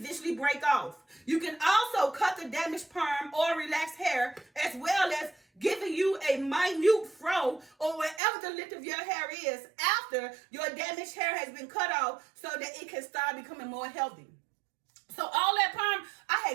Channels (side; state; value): left; drops out; at 8.2 s